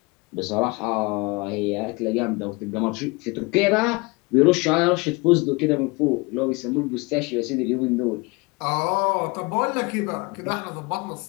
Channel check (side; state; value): right; quieter; 26.7 dB